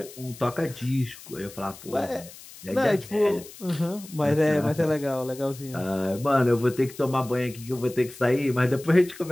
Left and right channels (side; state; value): left; noise; hiss, 18 dB below the sound